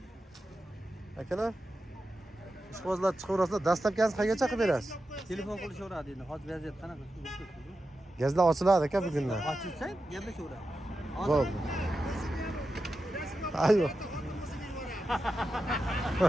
Akalar, ishqibozlar chiqaverasizlar. Dastlabkasini qayergacha qilib berasiz? Telefon qilishaveradi endi. Hozir vaziyat qanaqa? Gazlar ochiladi aka bugundan. Ochilsa, gaplashaveradi. Bo'ldi. Ayyo.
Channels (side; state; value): both; normal; correlation 0.90